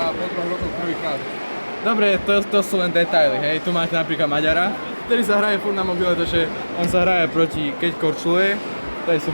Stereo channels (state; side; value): inverted; both; correlation -1.00